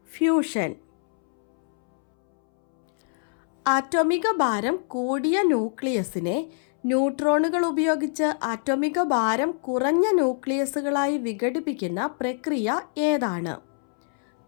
fusion. ആറ്റോമിക ഭാരം കൂടിയ ന്യൂക്ലിയസിനെ ന്യൂട്രോണുകൾ ഉപയോഗിച്ച് ആറ്റോമിക ഭാരം കുറഞ്ഞ ന്യൂക്ലിയസുകളായി വിഘടിപ്പിക്കുന്ന പ്രക്രിയ ഏതാണ്?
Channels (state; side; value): silent; right; 62 dB below the other